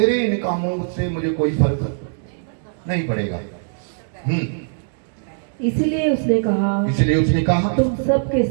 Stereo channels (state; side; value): silent; left; digital silence